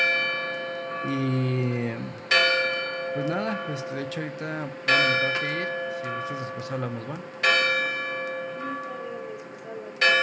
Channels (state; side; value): identical; both; correlation 1.00